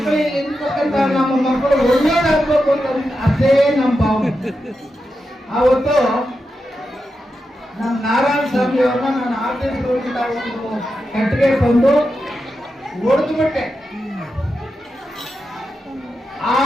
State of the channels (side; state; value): both; normal; correlation 0.88